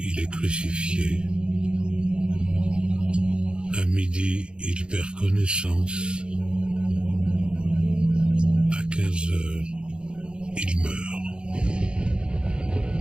est crucifié. À midi, il perd connaissance. À 15 heures, il meurt.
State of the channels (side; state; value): left; late; 0.054 ms